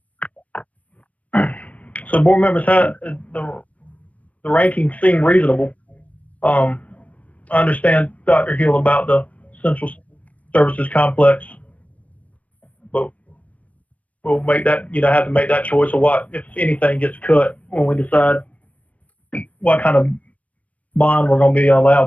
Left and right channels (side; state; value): right; late; 0.068 ms